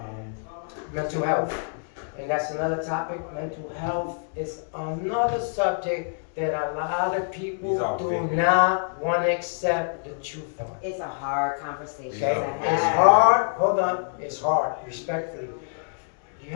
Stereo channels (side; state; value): right; silent; digital silence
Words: mental health. And that's another topic. Mental health is another subject that a lot of people These are do big. not want to accept the truth on. It's a hard conversation Okay? to It's have. hard. Hold on. It's hard. Respectfully, you